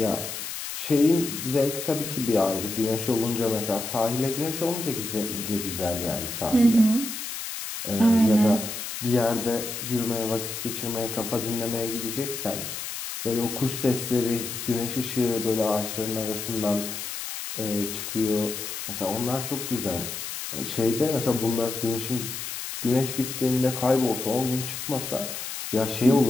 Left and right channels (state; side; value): noise; left; hiss, 6 dB below the sound